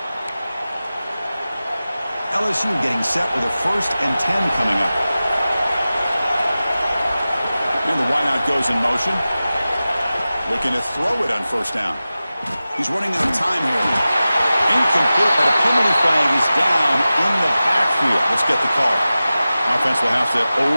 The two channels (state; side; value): inverted; both; correlation -0.95